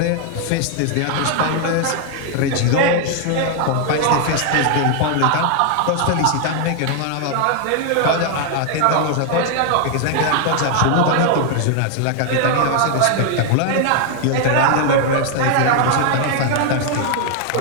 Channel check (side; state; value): both; different; correlation 0.00